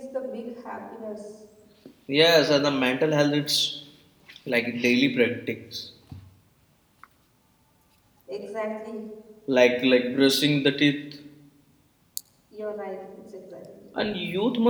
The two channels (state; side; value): identical; both; correlation 1.00